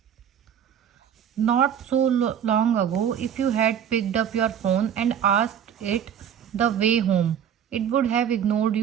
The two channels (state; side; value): quieter; left; 8.8 dB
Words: Not so long ago, if you had picked up your phone and asked it the way home, it would have ignored